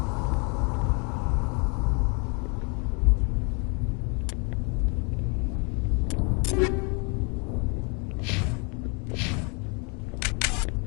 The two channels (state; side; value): quieter; right; 34.1 dB